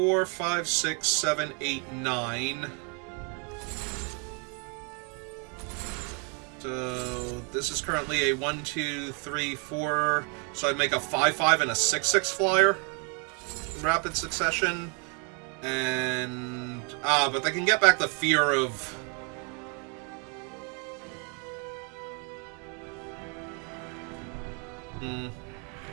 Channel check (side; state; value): left; quieter; 35.8 dB